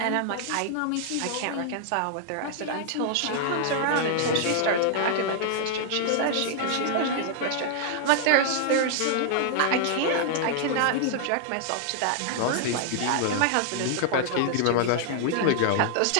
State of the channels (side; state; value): both; different; correlation 0.00